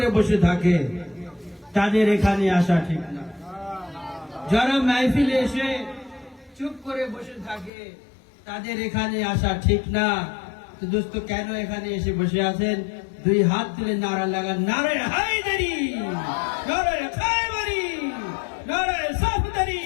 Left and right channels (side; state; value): right; drops out; at 7.7 s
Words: বসে থাকে তাদের এখানে আসা ঠিক না। যারা মাহফিলে এসে চুপ করে বসে থাকে তাদের এখানে আসা ঠিক না। তো দোস্ত, কেন এখানে এসে বসে আছেন? দুই হাত তুলে নারা লাগান, নারে হায়দারি, নারে খায়বারি, নারে সাফদারি।